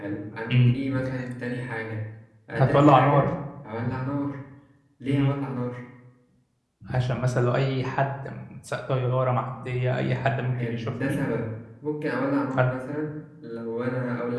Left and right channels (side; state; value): both; identical; correlation 1.00